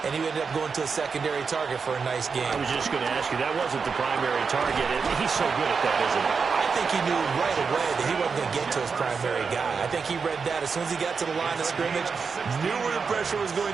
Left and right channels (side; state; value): left; quieter; 5.4 dB